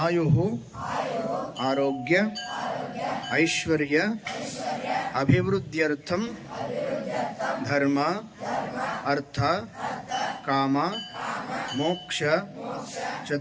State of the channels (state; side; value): identical; both; correlation 1.00